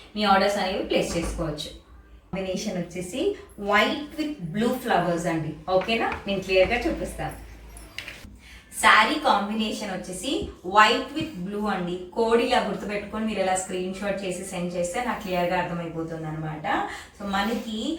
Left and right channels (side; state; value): both; identical; correlation 1.00